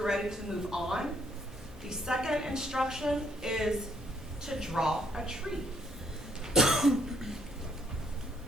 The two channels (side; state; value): both; normal; correlation 0.69